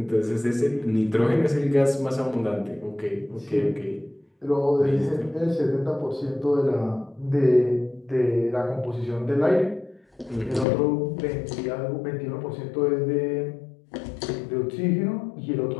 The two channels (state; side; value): drops out; right; at 10.7 s